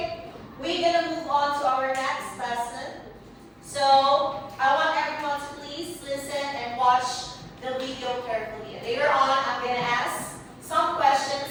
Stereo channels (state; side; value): identical; both; correlation 1.00